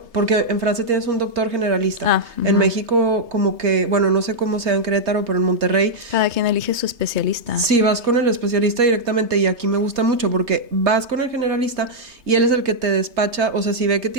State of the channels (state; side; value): late; left; 3.3 ms